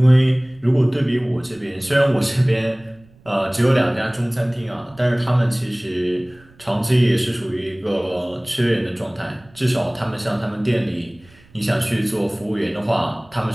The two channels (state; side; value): noise; right; rumble, 28 dB below the sound